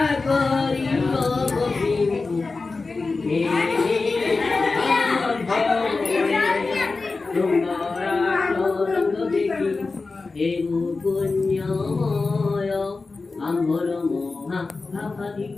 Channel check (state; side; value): quieter; right; 3.9 dB